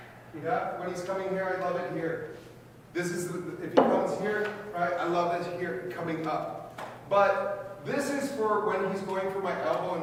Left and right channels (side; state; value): both; identical; correlation 1.00